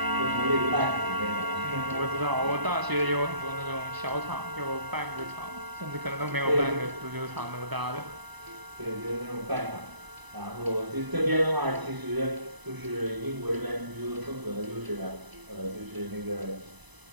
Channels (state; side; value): late; left; 1.0 ms